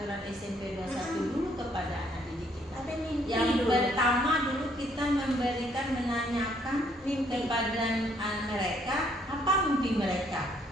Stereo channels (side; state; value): both; normal; correlation 0.67